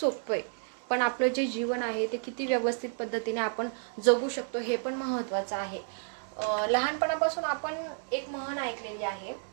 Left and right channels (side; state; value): left; silent; digital silence